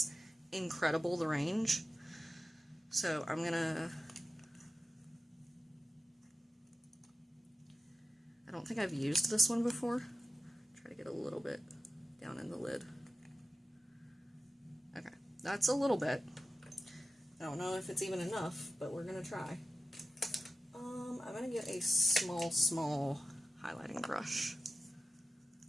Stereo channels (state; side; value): normal; both; correlation 0.93